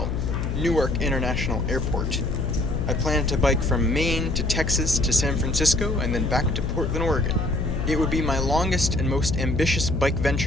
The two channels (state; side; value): noise; left; hum, 1 dB below the sound